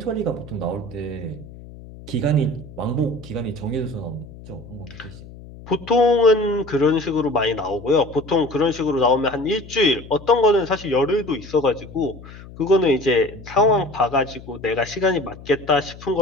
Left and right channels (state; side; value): noise; left; hum, 17 dB below the sound